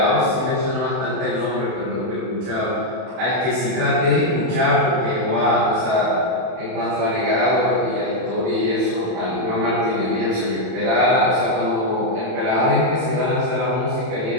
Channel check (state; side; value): late; left; 31 ms